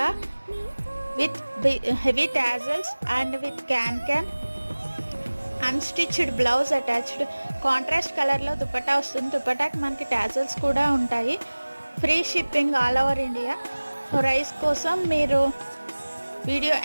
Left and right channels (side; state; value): both; inverted; correlation -1.00